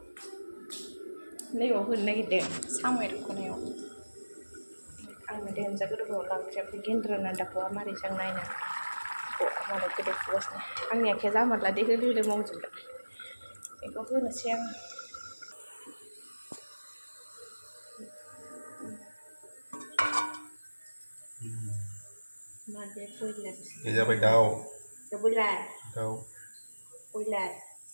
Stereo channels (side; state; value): both; inverted; correlation -1.00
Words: नैबाव होनो नागिरदों साम' एरख'नायाव आंनो देन्जार गोदौबाव ओंख्रिया गेन्द्रा दाखौआ मारै जों नायनो मालाय गोदौफुगासिनो आंनि आखाया जामारला दे होलो होलो मावजोबबाय बेखौ होनोसै आं माबे बयलार जाबाय दाउ बयलार